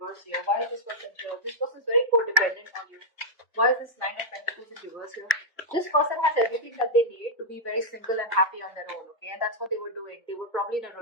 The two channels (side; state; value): both; normal; correlation -0.03